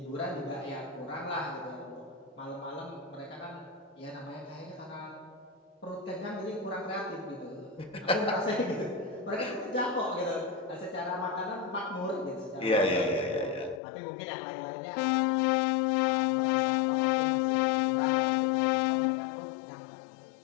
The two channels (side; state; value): right; drops out; at 13.8 s